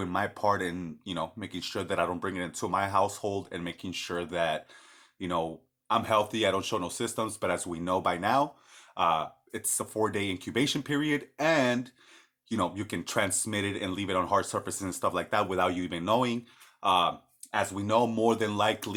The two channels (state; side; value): identical; both; correlation 1.00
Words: my part in, making sure that I don't bring it into my household and making sure that, I'm healthy. I don't show no symptoms. But as we know by now, it's a 4-day incubation period, and you can transmit it and leave it on hard surfaces and stuff like that without you even knowing. As we know, more than